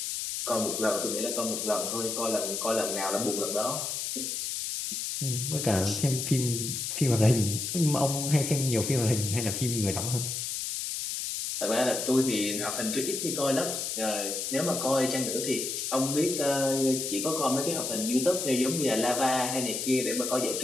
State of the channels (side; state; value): left; noise; hiss, 3 dB below the sound